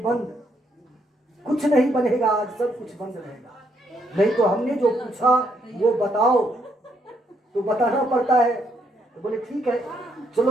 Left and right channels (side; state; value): both; normal; correlation 0.74